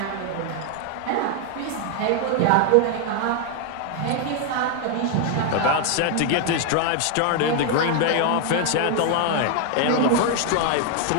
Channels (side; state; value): both; different; correlation 0.00